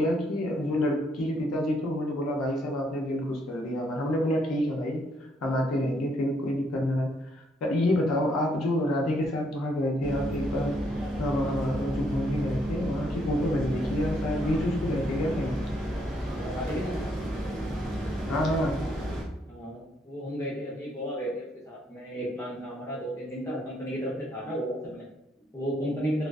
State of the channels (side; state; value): both; normal; correlation 0.72